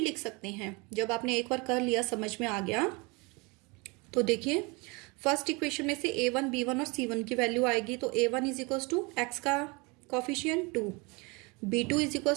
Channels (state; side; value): quieter; left; 28.0 dB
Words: सकते हैं, जब आपने एक बार कर लिया समझ में आ गया। तो देखिए फर्स्ट इक्वेशन में से a1 b1 और c1 की वैल्यू आएगी। तो a1 is equal to x का coefficient 2, b2 is equal